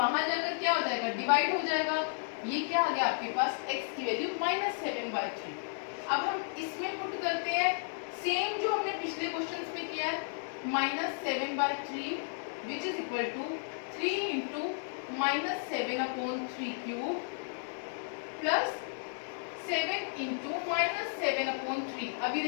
जाकर क्या हो जाएगा, डिवाइड हो जाएगा। ये क्या आ गया आपके पास, x की वैल्यू -7/3। अब हम इसमें पुट करते हैं सेम जो हमने पिछले क्वेश्चंस में किया है, -7/3 which is equal to 3 into -7/3³ plus 7 into -7/3। अभी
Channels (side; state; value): right; silent; digital silence